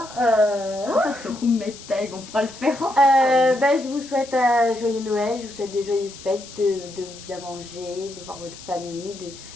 On passe au roommate tag, on pourra le faire ensemble. Bah, je vous souhaite un joyeux Noël, je vous souhaite de joyeuses fêtes, de bien manger, de voir votre famille,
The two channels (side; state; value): left; noise; hiss, 16 dB below the sound